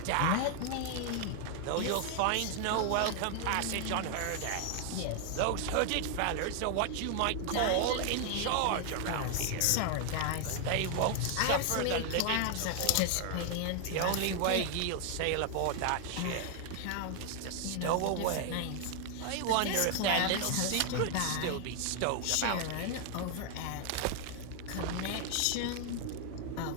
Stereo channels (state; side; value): different; both; correlation 0.00